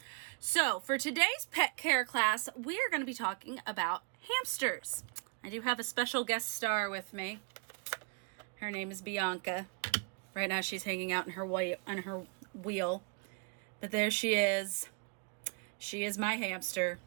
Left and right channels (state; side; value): quieter; left; 37.0 dB